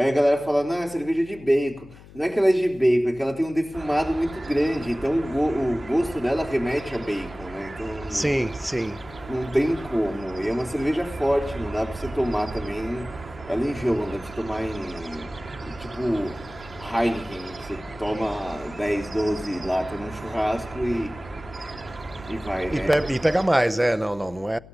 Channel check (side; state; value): left; noise; hum, 20 dB below the sound